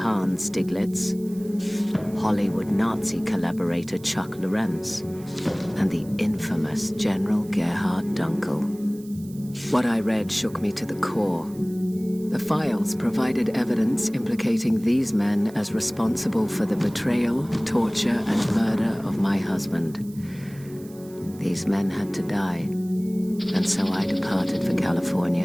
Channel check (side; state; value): right; noise; hiss, 23 dB below the sound